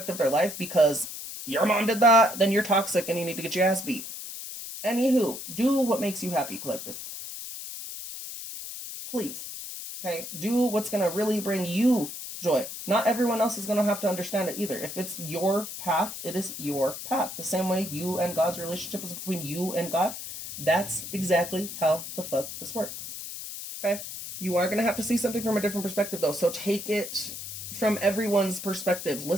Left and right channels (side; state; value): left; noise; hiss, 9 dB below the sound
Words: of their life because your mom did that, then you're toxic and you need to get your ass beat. Anywho, do what makes you happy, collective. Please. Okay? Do what's going to really bring you joy. Not everyone else is going to have to understand it either. If it's your path, it is your path. The same way you and God's relationship is between you and God, that's exactly how the fuck this works. Okay? You are going to have to see something from a different perspective, though. So take it from everyone's perspective.